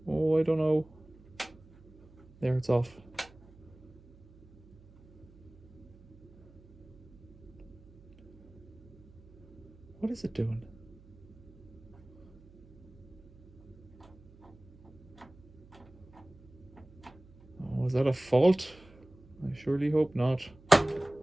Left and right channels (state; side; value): noise; right; hum, 24 dB below the sound